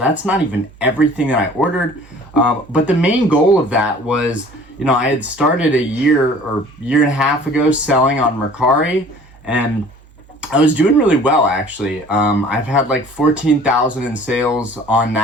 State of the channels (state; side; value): normal; both; correlation 0.49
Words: not even everything that I ordered. But the main goal of that was, I had started a year and a half ago selling on Mercari, and I was doing really well, actually. I've had like 14,000 in sales on